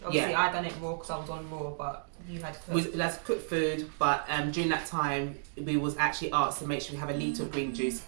Obviously, yeah. I done it raw because I was on raw, but you had to cook. We was allowed to cook food, but during that time, we was actually asked to make sure we have a litre of green juice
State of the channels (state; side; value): silent; left; digital silence